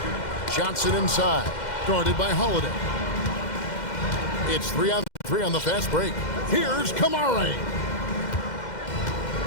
Johnson inside, guarded by Holiday. It's 3-on-3 on the fast break. Here's Kamara.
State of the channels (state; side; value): late; right; 2.1 ms